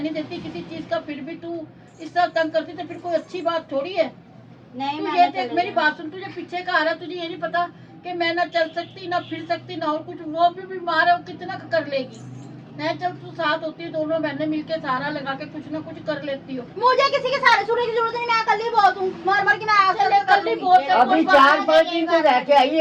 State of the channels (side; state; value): both; identical; correlation 1.00